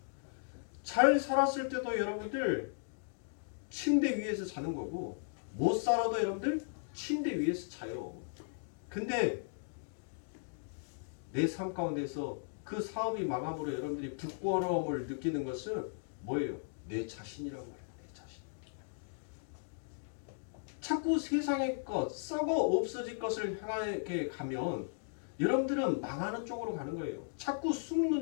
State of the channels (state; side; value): silent; right; digital silence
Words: 잘 살았을 때도 여러분들 침대 위에서 자는 거고, 못 살아도 여러분들 침대 위에서 자요. 근데 내 삶 가운데서 그 사업이 망함으로 여러분들이 부끄러움을 느끼는 것은 뭐예요? 내 자신이란 말이에요. 내 자신. 자꾸 세상의 것, 썩어 없어질 것을 향하게 가면 여러분들은 망하는 쪽으로 가는 거예요. 자꾸